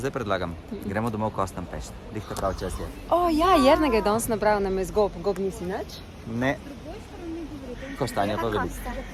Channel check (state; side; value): identical; both; correlation 1.00